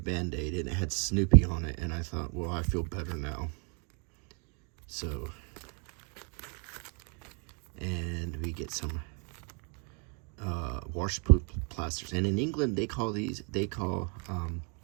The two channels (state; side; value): quieter; left; 36.5 dB